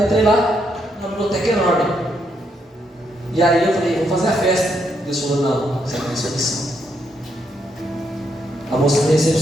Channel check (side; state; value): both; normal; correlation 0.77